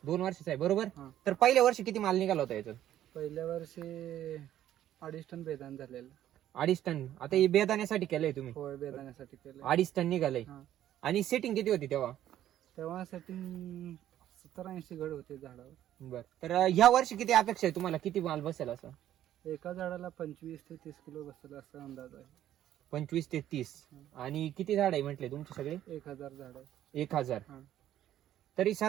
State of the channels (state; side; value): quieter; left; 12.0 dB